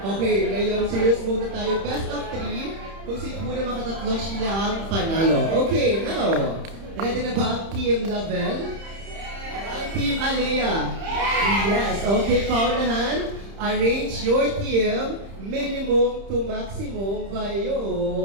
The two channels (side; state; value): left; late; 30 ms